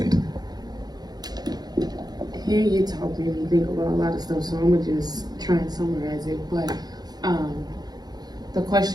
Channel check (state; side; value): late; left; 0.19 ms